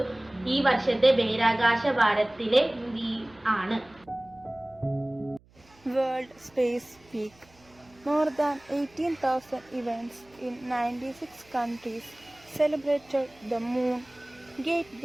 ഈ വർഷത്തെ ബഹിരാകാശ വാരത്തിലെ ആണ്. World Space Week. More than 18,000 events in 96 countries celebrated the moon,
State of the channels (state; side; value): noise; right; hum, 29 dB below the sound